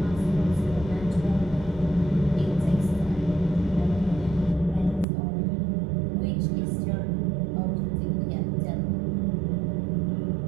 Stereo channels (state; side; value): drops out; left; at 5.1 s